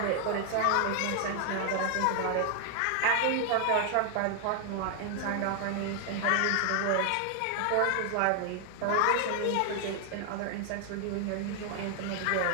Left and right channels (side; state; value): both; different; correlation 0.00